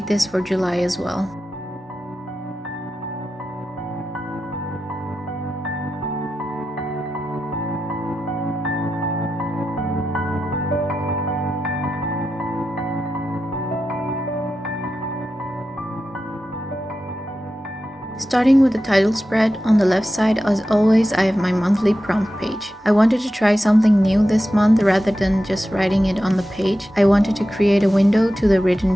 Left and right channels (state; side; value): normal; both; correlation 0.91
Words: this for July as well. Starting with the title spread, on the left side, as always, I have my monthly prompt page. I wanted to try something new this month rather than just writing it on the page. I wanted to create a window to the